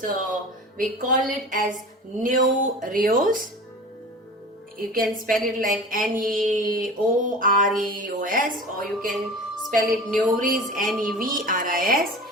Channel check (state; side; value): normal; both; correlation 0.36